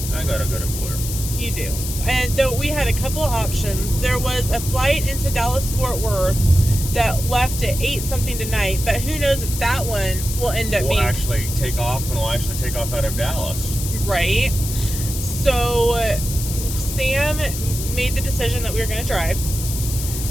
I got a good employer. You do. And though we had a couple of options, there was a flight into Dallas-Fort Worth that left at 8 something tonight, but who knows if that one will end up We'll being... actually take off, and we'll actually take off out of Dallas. Right. So Sam made the decision that we were going to drive.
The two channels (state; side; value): noise; left; hiss, 7 dB below the sound